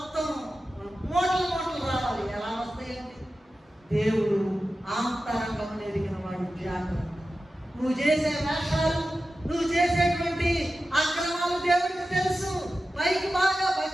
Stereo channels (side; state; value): both; normal; correlation 0.93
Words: మూటలు మూటలు రావాలి. ఎలా వస్తాయండి? దేవుడు ఆంతరంగం ఎరిగిన వాడు. జాగ్రత్త. నువ్వు చేసే వేషాలు, నువ్వు చేసేటువంటి అక్రమాలు దేవుడికి తెలుసు. పైకి బాగా